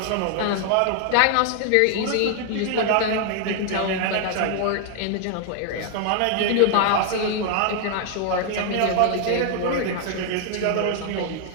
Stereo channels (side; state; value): both; different; correlation 0.00